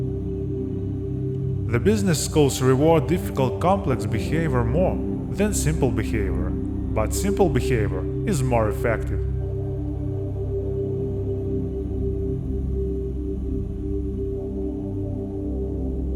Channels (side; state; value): both; identical; correlation 1.00